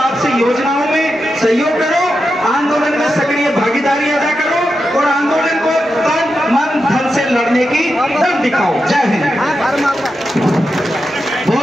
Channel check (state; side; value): normal; both; correlation 0.88